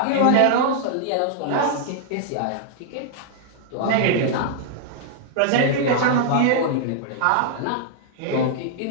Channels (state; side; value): different; both; correlation -0.01